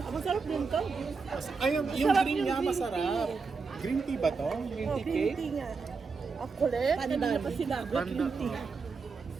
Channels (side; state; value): left; quieter; 4.8 dB